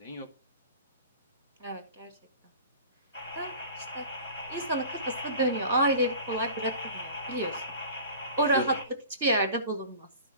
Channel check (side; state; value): both; inverted; correlation -0.40